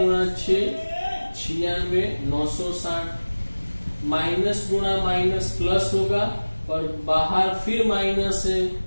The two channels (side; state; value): both; inverted; correlation -1.00